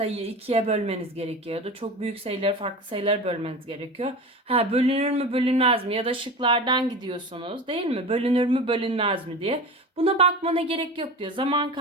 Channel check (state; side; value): normal; both; correlation 0.31